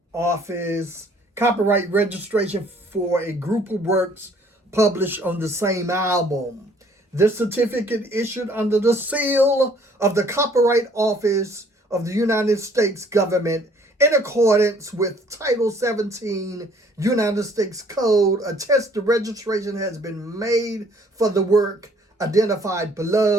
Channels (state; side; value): normal; both; correlation 0.59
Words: Office, copyright registration for a group of works published on the same album. This certificate, issued under the seal of the Copyright Office of the United States government in accordance with Title 17 United States Code, attests the registration has been made for the work identified